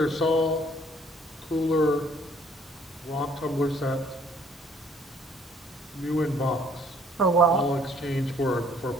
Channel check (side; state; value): both; normal; correlation 0.60